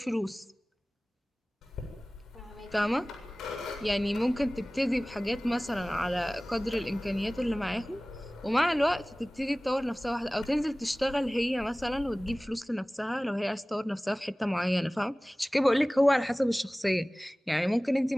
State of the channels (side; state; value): both; normal; correlation 0.98